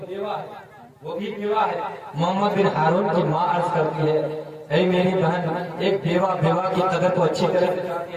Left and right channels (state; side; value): identical; both; correlation 1.00